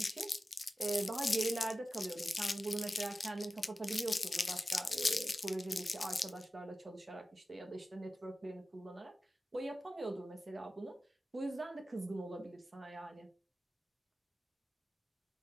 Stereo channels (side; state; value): both; normal; correlation 0.94